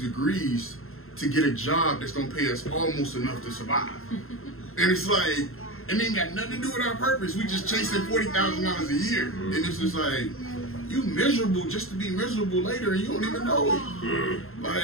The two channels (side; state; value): right; late; 0.61 ms